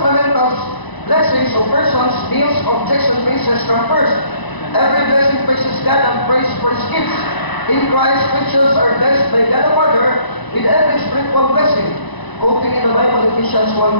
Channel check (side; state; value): right; late; 1.0 ms